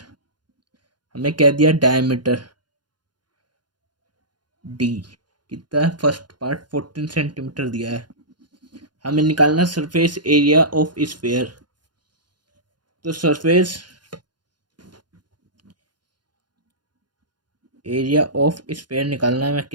हमें क्या दिया, डायमीटर डी कितना है, फर्स्ट पार्ट 14 सेंटीमीटर दिया है। हमें निकालना सरफेस एरिया ऑफ स्फीयर। तो सरफेस एरिया ऑफ स्फीयर निकालना है,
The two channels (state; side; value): late; left; 0.71 ms